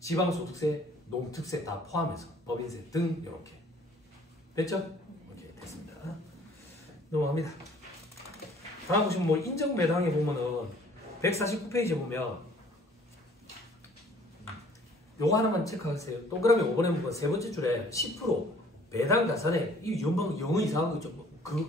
농특세 다 포함해서 법인세 등 이렇게. 됐죠? 오케이, 됐습니다. 넘어갑니다. 다음 보시면 뭐 인정매당에 보면은 149페이지에 보면 요거 하나만 체크하세요. 동그라미 5번에 보면 세 번째 줄에 10% 배당 자산에 이 연방 영어 이상한 거 있죠.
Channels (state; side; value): normal; both; correlation 0.55